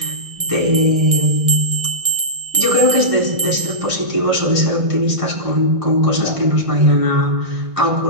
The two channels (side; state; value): left; late; 1.6 ms